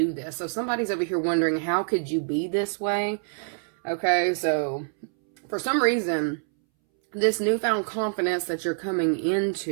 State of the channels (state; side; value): silent; left; 61 dB below the other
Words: this? So somebody's over here wondering, how could you be this way? Okay, so for some reason, this newfound confidence that you're coming